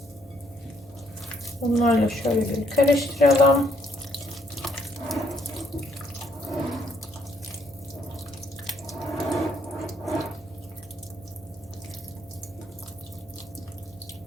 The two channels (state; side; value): normal; both; correlation 0.70